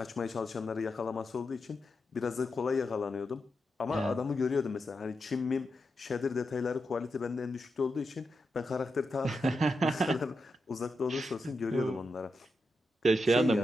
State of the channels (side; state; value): both; normal; correlation 0.87